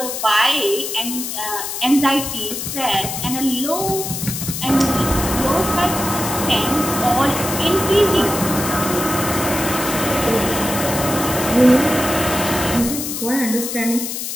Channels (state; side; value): noise; left; hiss, 5 dB below the sound